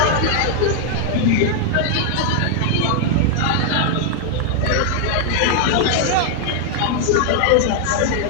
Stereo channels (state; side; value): different; both; correlation 0.00